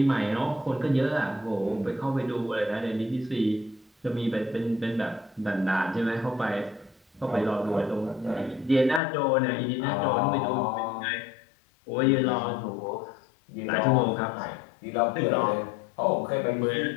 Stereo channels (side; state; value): right; drops out; at 9.0 s